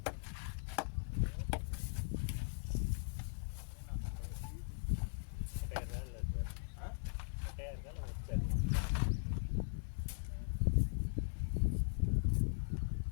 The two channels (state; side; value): silent; right; digital silence